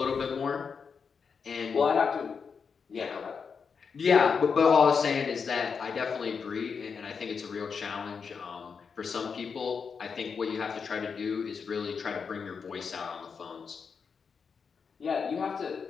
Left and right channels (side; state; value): right; quieter; 5.9 dB